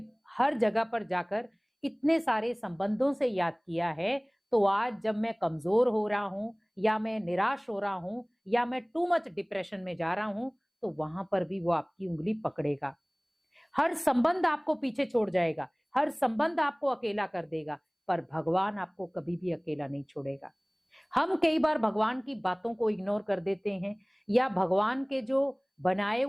हर जगह पर जाकर इतने सारे संबंधों से याद किया है, तो आज जब मैं कमजोर हो रहा हूं या मैं निराश हो रहा हूं या मैं टू मच डिप्रेशन में जा रहा हूं, तो वहां पर भी वो आपकी उंगली पकड़ेगा। हर संबंध आपको पीछे छोड़ जाएगा, हर संबंध आपको अकेला कर देगा, पर भगवान आपको कभी भी अकेला नहीं छोड़ेगा। हम कई बार भगवान की बातों को इग्नोर कर देते हैं, या भगवान के जो बनाए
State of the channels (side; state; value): both; identical; correlation 1.00